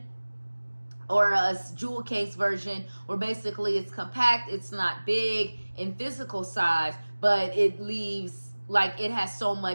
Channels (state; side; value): inverted; both; correlation -1.00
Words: or a jewel case version, where basically it's compact, it's not big in physical size, but it leaves, like, it has so